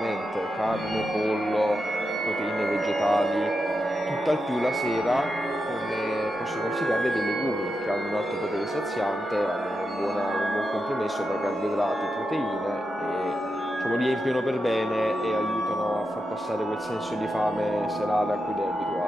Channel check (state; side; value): normal; both; correlation 0.87